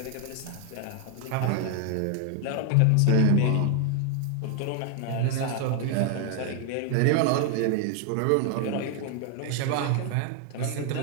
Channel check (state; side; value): different; both; correlation 0.00